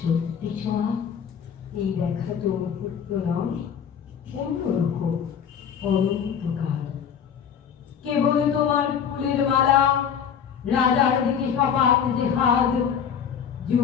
ছোঁয়া। এই দেখা তো মুহূর্ত নয়, অন্যরকম অনন্তকাল। কেবল তোমার ফুলের মালা, রাজার দিকে সপাত যে হাত,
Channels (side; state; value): right; quieter; 7.9 dB